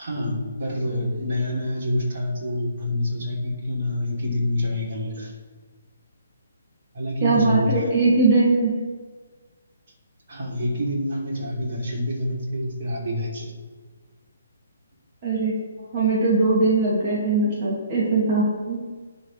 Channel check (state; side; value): inverted; both; correlation -0.59